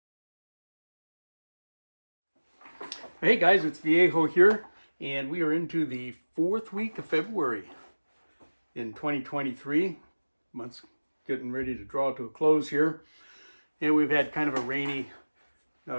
guys, it's Viejo here, and we are into the 4th week of February in 2023. Month's getting ready to draw to a close here, and we've had kind of a rainy,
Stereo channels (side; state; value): both; inverted; correlation -1.00